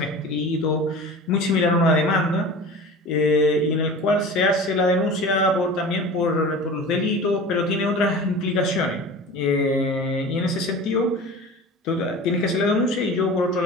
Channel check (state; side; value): normal; both; correlation 0.37